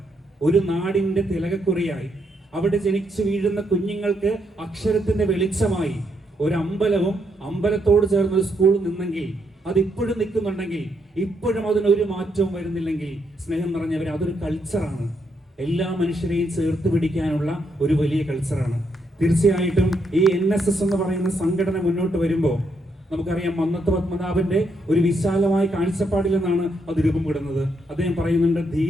ഒരു നാടിന്റെ തിലകക്കുറിയായി അവിടെ ജനിച്ചു വീഴുന്ന കുഞ്ഞുങ്ങൾക്ക് അക്ഷരത്തിന്റെ വെളിച്ചമായി ഒരു അമ്പലവും അമ്പലത്തോട് ചേർന്ന ഒരു സ്കൂൾ നിന്നെങ്കിൽ, അതിപ്പോഴും നിൽക്കുന്നുണ്ടെങ്കിൽ, ഇപ്പോഴും അതിനൊരു മാറ്റവും വരുന്നില്ലെങ്കിൽ, സ്നേഹം നിറഞ്ഞവരെ, അതൊരു കൾച്ചറാണ്. എല്ലാ മനുഷ്യരെയും ചേർത്ത് പിടിക്കാനുള്ള ഒരു വലിയ കൾച്ചറാണ്. തീർച്ചയായിട്ടും ഈ NSS എന്ന് പറയുന്ന സംഘടന മുന്നോട്ട് വരുമ്പോൾ നമുക്കറിയാം, മന്നത്ത് പത്മനാഭന്റെ ഒരു വിശാലമായ കാഴ്ചപ്പാടിൽ നിന്നാണ് അത് രൂപപ്പെടുന്നത്. അദ്ദേഹം പറയുന്നുണ്ട്,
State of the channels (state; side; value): normal; both; correlation 0.77